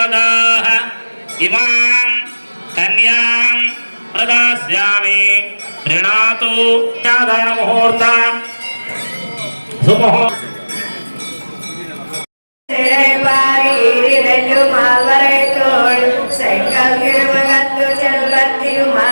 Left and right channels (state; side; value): inverted; both; correlation -1.00